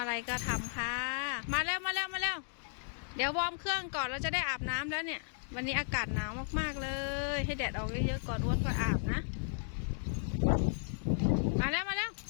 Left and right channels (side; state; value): right; silent; digital silence